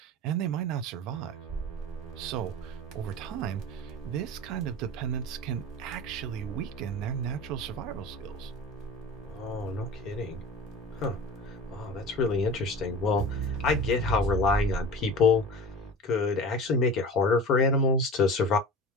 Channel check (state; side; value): normal; both; correlation 0.35